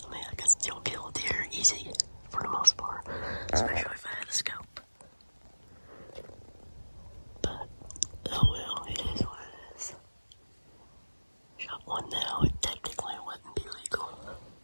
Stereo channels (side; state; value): both; inverted; correlation -1.00